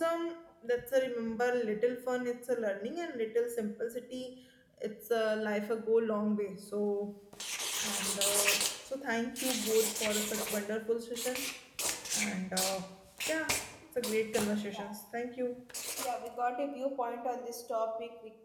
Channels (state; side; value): identical; both; correlation 1.00